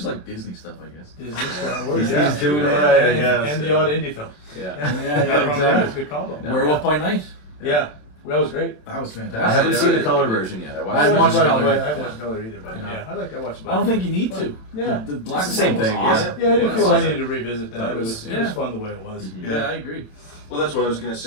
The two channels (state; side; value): late; right; 27 ms